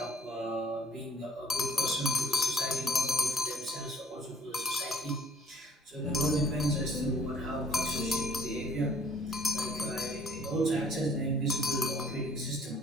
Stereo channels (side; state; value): both; normal; correlation 0.55